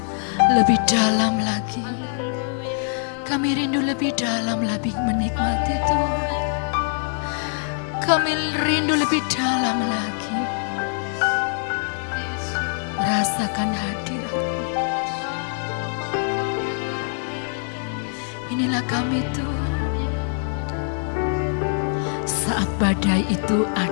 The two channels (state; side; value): silent; right; digital silence